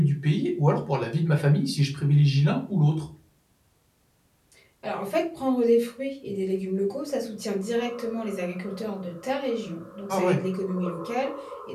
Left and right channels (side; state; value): both; identical; correlation 1.00